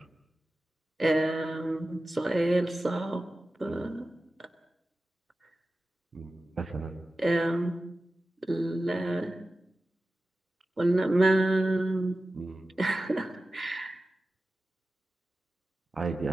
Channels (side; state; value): both; normal; correlation 0.94